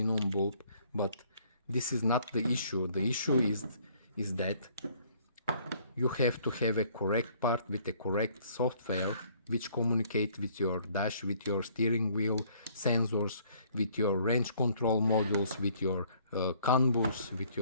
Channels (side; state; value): both; inverted; correlation -0.61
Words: bulb, but this is not the issue. The issue is that you have to have a correct part with a correct software which communicate with your dash, with your steering wheel sensors, with your range control modules, with your CAN bus, with